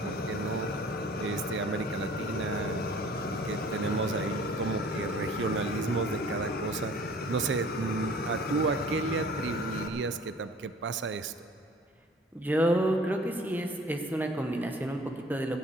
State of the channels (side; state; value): both; normal; correlation 0.50